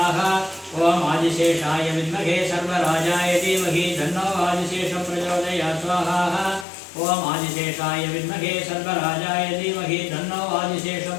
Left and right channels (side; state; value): right; drops out; at 6.7 s